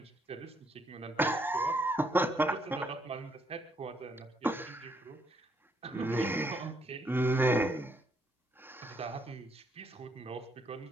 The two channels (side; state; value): both; normal; correlation 0.72